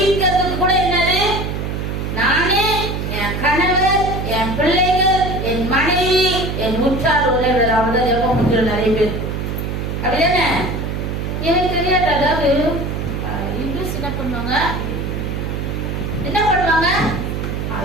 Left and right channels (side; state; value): right; noise; hum, 3 dB below the sound